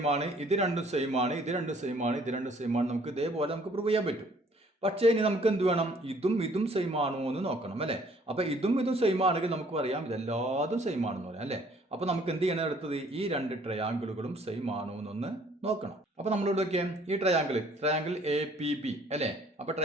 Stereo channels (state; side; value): normal; both; correlation 0.59